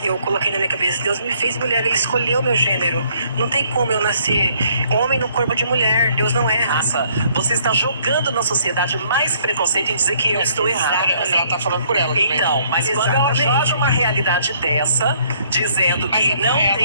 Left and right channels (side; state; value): both; inverted; correlation -0.64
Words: eu coloquei na minha cabeça, Deus me fez mulher, ele escolheu meu gênero. Não tem como eu nascer homem no corpo de mulher, Deus não erra. Nossa, você está jogando na sociedade mais preconceito em dizer que eu estou errada. Mas ela tá falando por ela também. Então, mas quando ela joga uma realidade dessa, dizendo que não